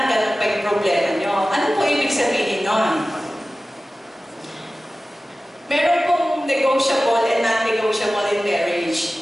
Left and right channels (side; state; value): both; normal; correlation 0.96